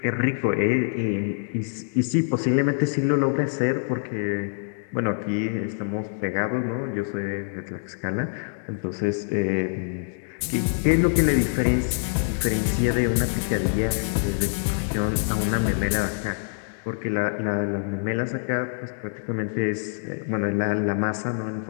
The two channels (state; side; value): silent; right; 62 dB below the other